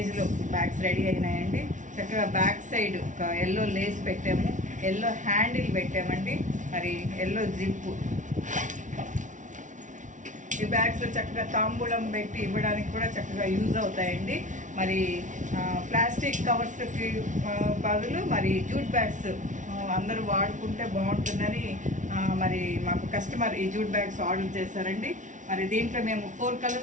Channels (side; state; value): left; late; 0.37 ms